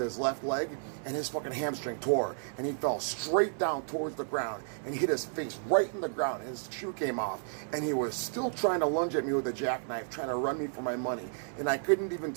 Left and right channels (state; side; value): silent; left; 56 dB below the other